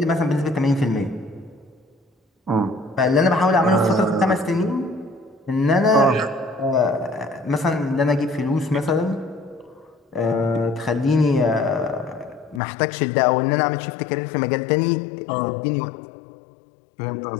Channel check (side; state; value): right; drops out; at 12.6 s